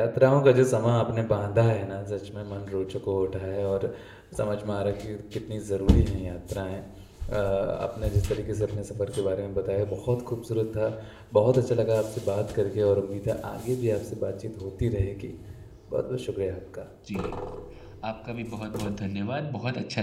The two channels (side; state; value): both; identical; correlation 1.00